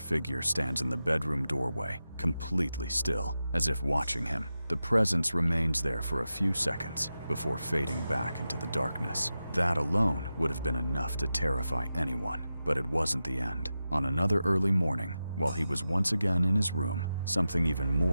stands in the bedroom doorway, completely still, as if watching him. The presence remains there for a few seconds before fading back into the darkness. That alone would have been enough to terrify anyone, but it wasn't the end. On another early morning, while he was once again in his room, something even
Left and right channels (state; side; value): inverted; both; correlation -0.92